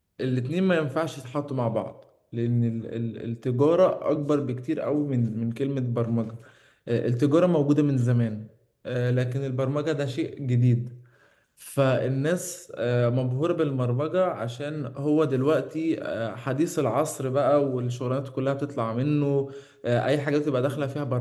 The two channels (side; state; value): both; identical; correlation 1.00